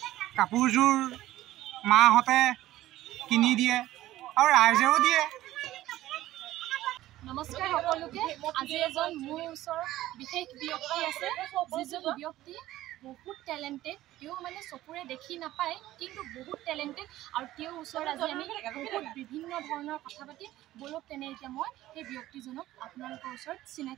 কাপোৰযোৰ মাহঁতে কিনি দিয়ে আৰু ৰাইজেও দিয়ে। নমস্কাৰ সকলোকে। আজি এজন মোৰ ওচৰত বিশেষ ব্যক্তি আছে, যিজন ব্যক্তি বহুত টেলেণ্টেড। তেওঁ মানে চকুৰে দেখি নাপায় কিন্তু বহুত টেলেণ্টেড, আৰু তেওঁৰ ওচৰত আজি আমি বহুত বিভিন্ন ধৰণৰ কথা পাতি বলক তেনে এতিয়া মই সেই ব্যক্তিজনক আপোনালোকৰ ওচৰত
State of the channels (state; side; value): quieter; left; 15.1 dB